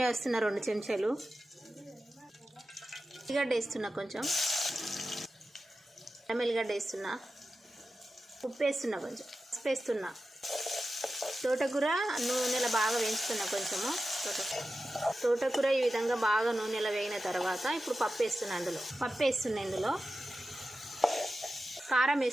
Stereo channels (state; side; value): normal; both; correlation 0.93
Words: వేస్తున్నా 2 చెంచాలు. ఉల్లిగడ్డ వేస్తున్నా, కొంచెం ఎల్లిగడ్డ వేస్తున్నా, ఉప్పు వేస్తున్నా, కొంచెం పసుపు వేస్తున్నా. తోటకూర నూనెలో బాగా వేయించుతున్నా. కొంచెము తోటకూర ఈ విధంగా బాగా నూనెలో వేగిన తర్వాత ఇప్పుడు పప్పు వేస్తున్నా. ఇందులో కారం